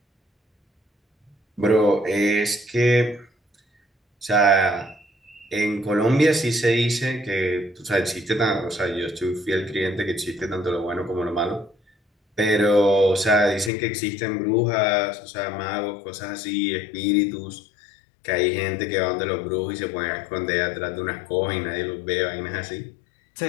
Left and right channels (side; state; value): right; drops out; at 13.7 s